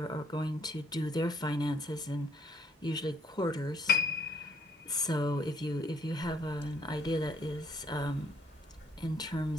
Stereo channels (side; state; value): both; normal; correlation 0.66